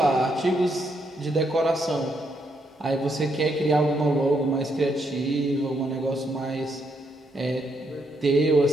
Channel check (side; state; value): both; normal; correlation 0.76